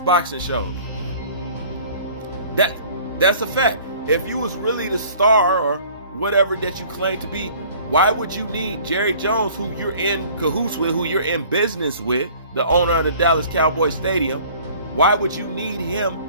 show. That's a fact. If you was really the star or whatever that you claim to be, why would you need Jerry Jones, who you're in cahoots with, who you're in business with, the owner of the Dallas Cowboys Stadium? Why would you need him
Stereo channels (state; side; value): inverted; both; correlation -0.51